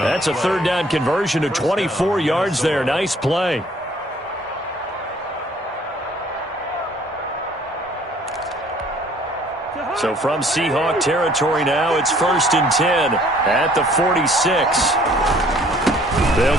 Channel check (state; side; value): normal; both; correlation 0.58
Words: a 3rd down conversion to 24 yards there. Nice play. So from Seahawk territory now, it's 1st and 10 at the 46.